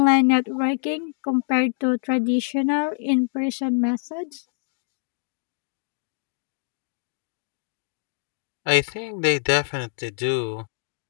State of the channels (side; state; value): right; silent; 59 dB below the other